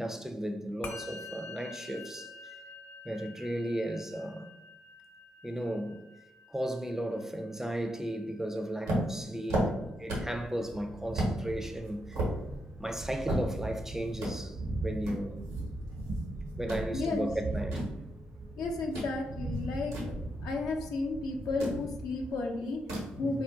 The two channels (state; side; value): normal; both; correlation 0.82